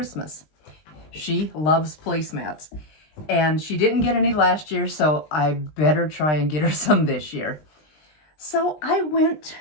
She loves placemats and she didn't get any last year, so I better try and get her some this year. So I went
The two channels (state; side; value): late; right; 20 ms